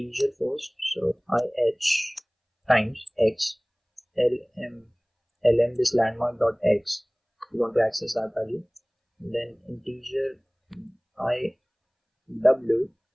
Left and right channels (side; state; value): both; identical; correlation 1.00